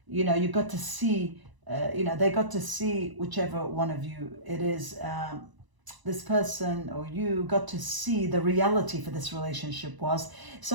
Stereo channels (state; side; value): late; left; 1.0 ms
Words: you know, you got to see, you know, they got to see, whichever one of you it is, this person or you got to see the reality for this relationship was.